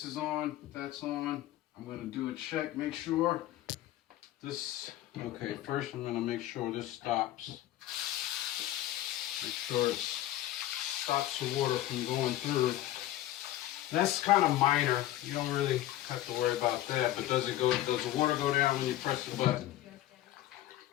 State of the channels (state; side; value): quieter; right; 14.4 dB